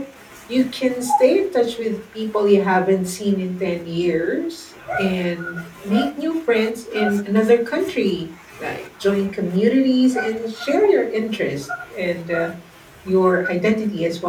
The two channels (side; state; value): both; identical; correlation 1.00